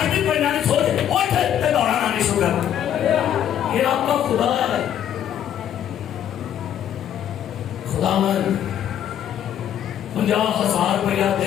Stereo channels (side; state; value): right; quieter; 10.2 dB